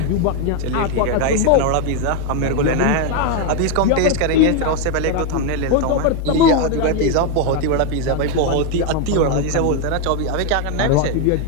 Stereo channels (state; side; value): different; both; correlation 0.01